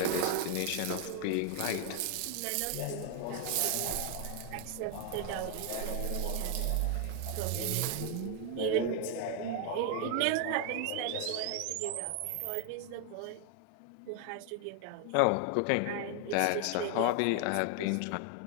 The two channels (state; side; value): different; both; correlation 0.00